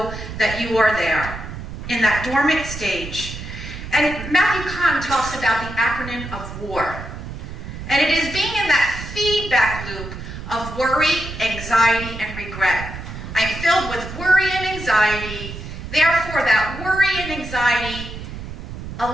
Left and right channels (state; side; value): noise; right; rumble, 10 dB below the sound